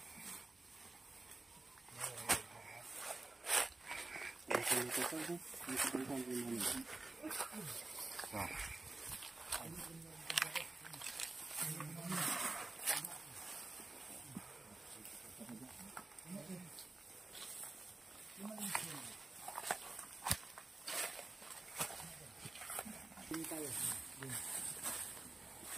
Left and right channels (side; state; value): left; quieter; 3.2 dB